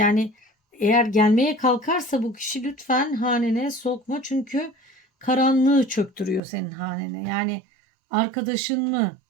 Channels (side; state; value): left; drops out; at 6.4 s